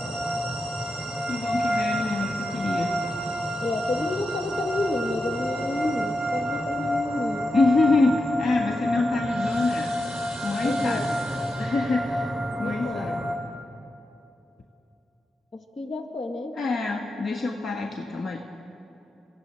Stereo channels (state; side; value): normal; both; correlation 0.88